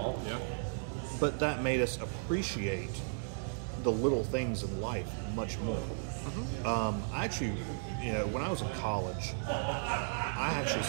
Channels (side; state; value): left; silent; digital silence